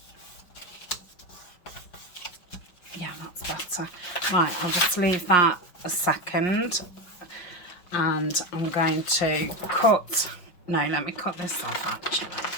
Yeah, that's better. Right, I'll just leave that a second, and I'm going to cut. No, let me cut this off actually.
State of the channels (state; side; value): late; right; 5.7 ms